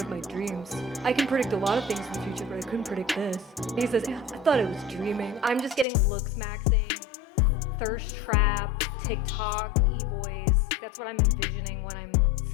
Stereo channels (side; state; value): right; drops out; at 5.9 s